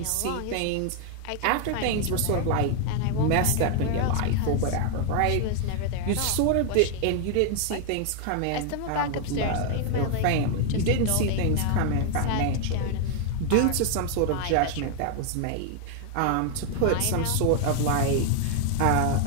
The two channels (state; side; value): different; both; correlation 0.00